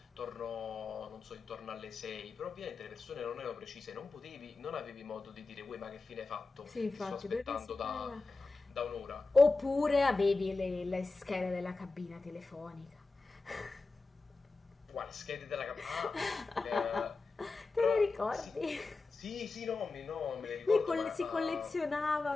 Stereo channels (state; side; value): quieter; right; 3.8 dB